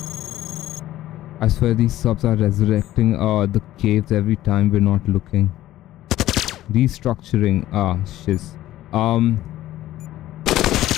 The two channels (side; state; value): right; quieter; 14.5 dB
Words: I swear these subs are resurrecting the caves every time we're not looking. Restructuring. Shiz.